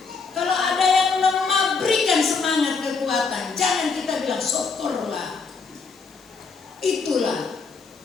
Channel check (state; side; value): quieter; right; 4.8 dB